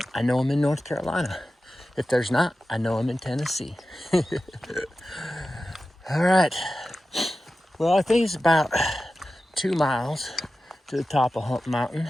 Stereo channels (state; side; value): normal; both; correlation 0.94